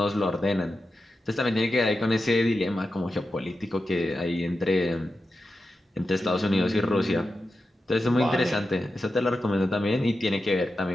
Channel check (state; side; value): normal; both; correlation 0.91